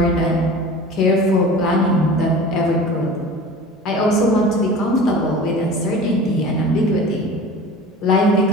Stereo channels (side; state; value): both; normal; correlation 0.38